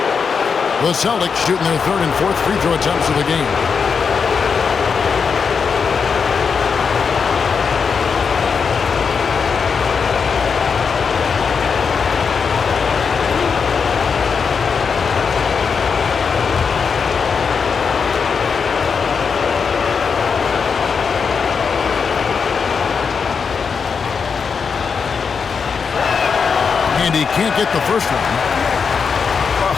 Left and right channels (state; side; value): quieter; right; 5.8 dB